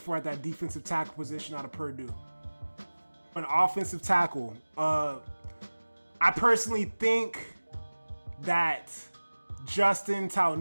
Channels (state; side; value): inverted; both; correlation -1.00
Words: at that defensive tackle position out of Purdue. An offensive tackle, I personally think that Justin